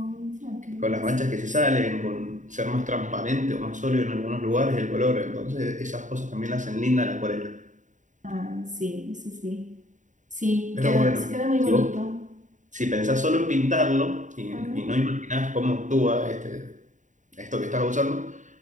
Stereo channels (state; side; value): late; left; 0.36 ms